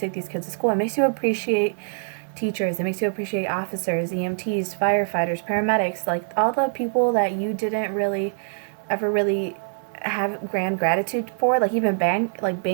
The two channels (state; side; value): silent; left; digital silence